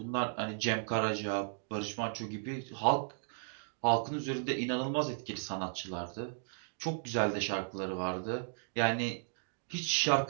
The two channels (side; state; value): left; silent; digital silence